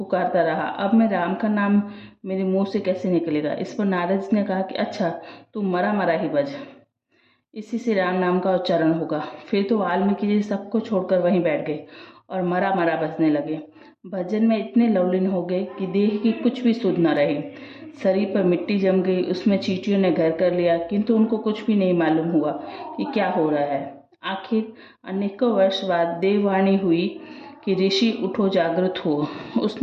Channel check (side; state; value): both; identical; correlation 1.00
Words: रहा, अब मैं राम का नाम मेरे मुंह से कैसे निकलेगा। इस पर नारद जी ने कहा कि अच्छा, तू मरा मरा ही बज, इसी से राम नाम का उच्चारण होगा। फिर तो वाल्मीकि जी सबको छोड़कर वहीं बैठ गए और मरा मरा बजने लगे। भजन में इतने लवलीन हो गए कि देह की कुछ भी सुध न रही। शरीर पर मिट्टी जम गई, उसमें चींटियों ने घर कर लिया, किंतु उनको कुछ भी नहीं मालूम हुआ कि क्या हो रहा है। आखिर अनेकों वर्ष बाद देववाणी हुई कि ऋषि उठो, जागृत हो।